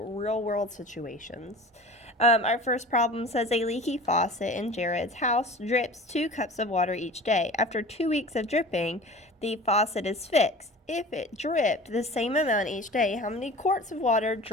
world situations. Our first problem says a leaky faucet in Jared's house drips 2 cups of water each day. After 2 weeks of dripping, the faucet is fixed. If it dripped the same amount each day, how many quarts of water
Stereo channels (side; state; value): both; normal; correlation 0.39